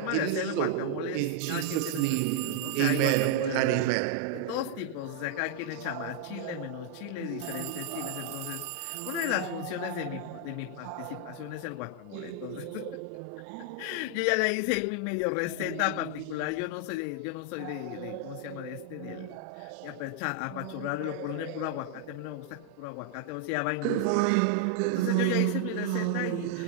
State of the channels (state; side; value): different; both; correlation 0.00